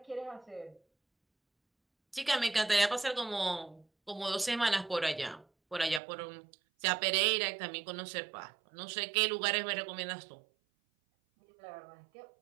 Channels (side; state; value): left; drops out; at 6.0 s